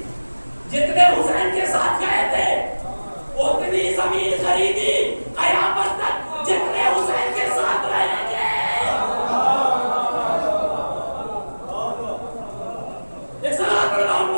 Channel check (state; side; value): inverted; both; correlation -1.00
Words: जितने हुसैन के साथ गए थे, उतनी जमीन खरीदी कयामत तक जितने हुसैन के साथ रहेंगे।